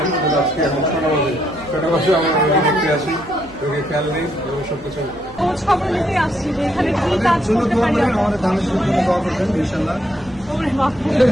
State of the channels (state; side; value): noise; right; hum, 22 dB below the sound